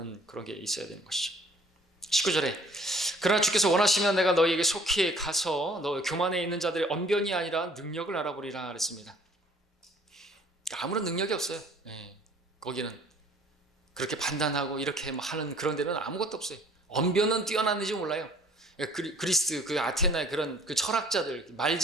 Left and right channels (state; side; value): normal; both; correlation 0.56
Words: 그런 게 있어야 되는 것이죠. 19절에 그러나 주께서 원하시면 내가 너희에게 속히 가서 너 교만에 있는 자들의 언변이 아니라 능력을 알아보리라 그랬습니다. 아무런 능력이 없어요. 거기는 그렇게 판단하고 이렇게 하는 그런 데는 아무것도 없어요. 언변은 뛰어났는지 몰라요. 그리스 그 아테나의 그런 그 철학자들